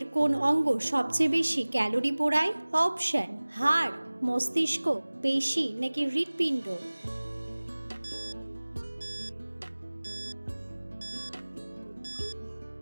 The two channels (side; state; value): both; inverted; correlation -1.00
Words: কোন অঙ্গ সবচেয়ে বেশি ক্যালোরি পোড়ায়? অপশন: হাড়, মস্তিষ্ক, পেশি নাকি হৃৎপিণ্ড?